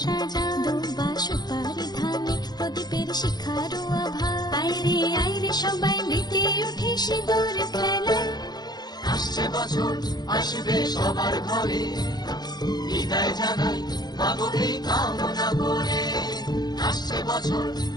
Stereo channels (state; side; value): late; right; 0.20 ms